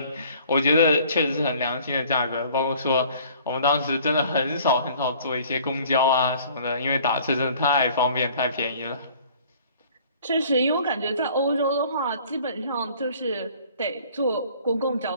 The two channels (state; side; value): inverted; both; correlation -0.53